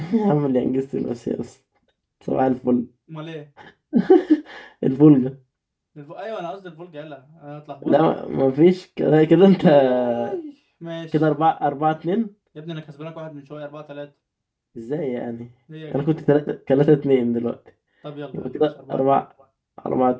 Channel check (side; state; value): both; identical; correlation 1.00